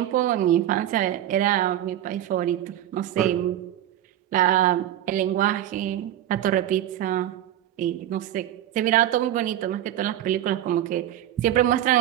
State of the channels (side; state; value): left; quieter; 12.1 dB